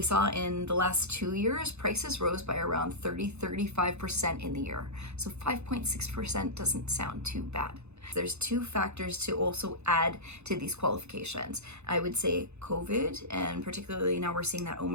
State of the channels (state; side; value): late; left; 0.81 ms